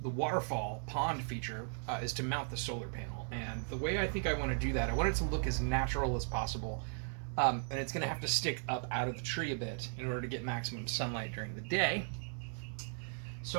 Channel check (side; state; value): left; silent; 53 dB below the other